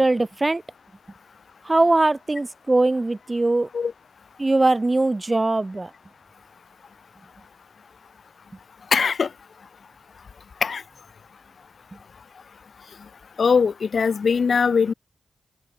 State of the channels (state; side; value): normal; both; correlation 0.92